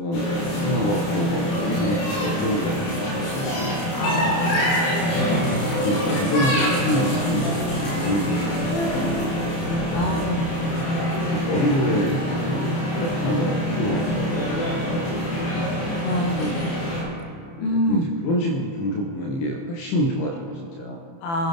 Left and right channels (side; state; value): right; late; 30 ms